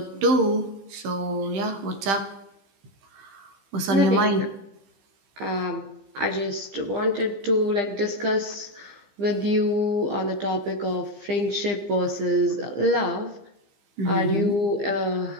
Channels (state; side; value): late; left; 15 ms